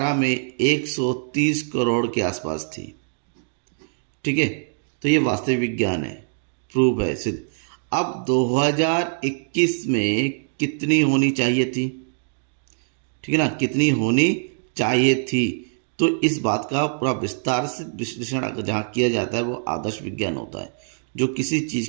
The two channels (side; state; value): left; silent; digital silence